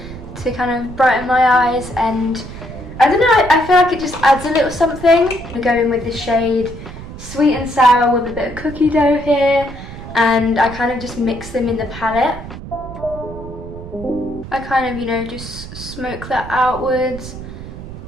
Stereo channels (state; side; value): noise; right; rumble, 12 dB below the sound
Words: to kind of brighten my eyes, and I don't know, I feel like it just adds a little something. We go in with the shade Sweet and Sour with a bit of cookie dough here, and I kind of just mix them in the palette. I kind of, you know, just smoke that outwards